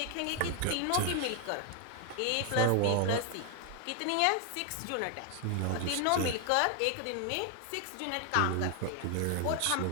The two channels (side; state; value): both; different; correlation 0.00